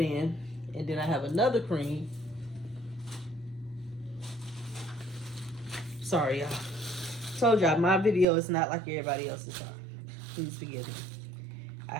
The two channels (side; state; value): left; drops out; at 8.2 s